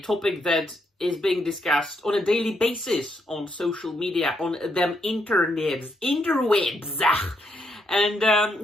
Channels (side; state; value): both; normal; correlation 0.77